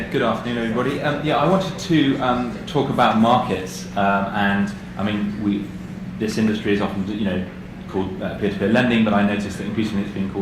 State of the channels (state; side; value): identical; both; correlation 1.00